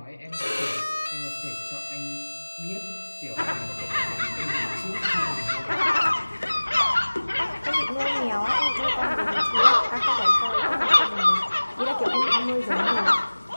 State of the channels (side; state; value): both; inverted; correlation -1.00